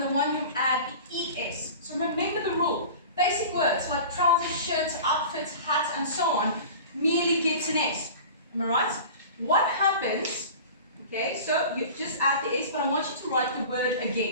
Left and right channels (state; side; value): inverted; both; correlation -0.38